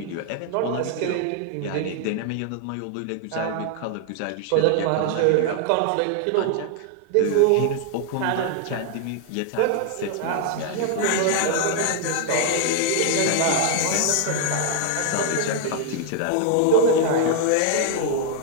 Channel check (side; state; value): both; different; correlation 0.00